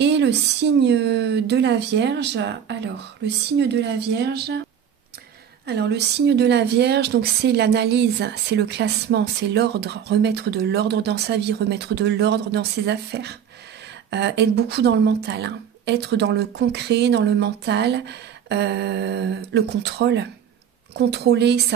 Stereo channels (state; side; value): quieter; left; 8.6 dB